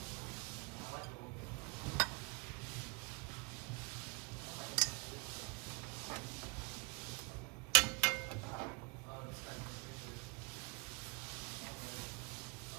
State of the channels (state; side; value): quieter; left; 32.2 dB